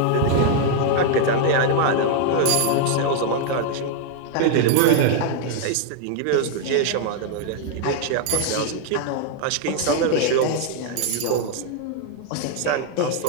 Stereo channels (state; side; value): different; both; correlation 0.00